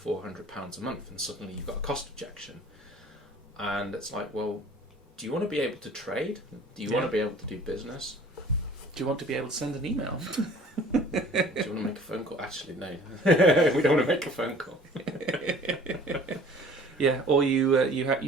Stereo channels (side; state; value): both; normal; correlation 0.50